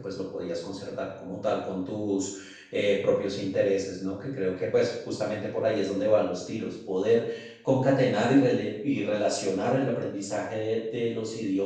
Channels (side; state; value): both; identical; correlation 1.00